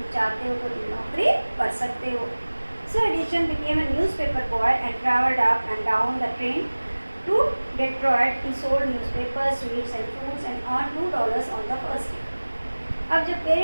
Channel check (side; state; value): both; inverted; correlation -1.00